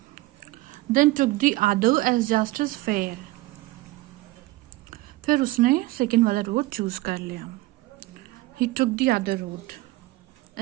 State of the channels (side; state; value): left; quieter; 19.2 dB